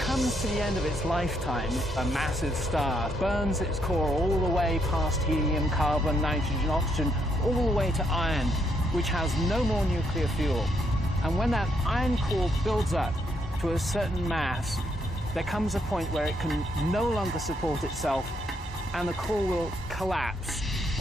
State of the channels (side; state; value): both; normal; correlation 0.75